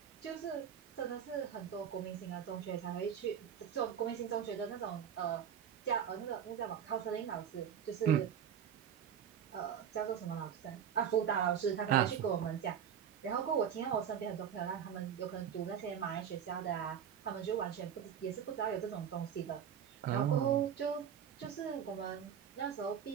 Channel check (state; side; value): quieter; left; 8.6 dB